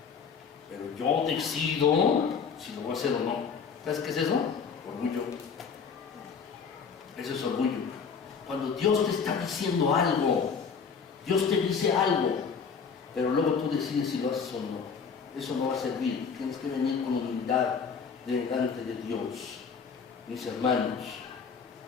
pero yo decido si lo voy a hacer o no. ¿Sabes qué es eso? Orgullo. Eso es orgullo. Cuando Dios te está diciendo algo, Dios te dice algo, pero luego tú decides si lo haces o no. Eso no va a servir. Tienes que venir con humildad delante de Dios, mis hermanos.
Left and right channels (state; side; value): quieter; right; 6.0 dB